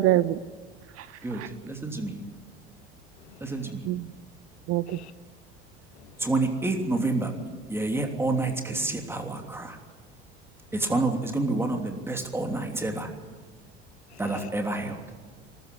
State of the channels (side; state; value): left; quieter; 4.0 dB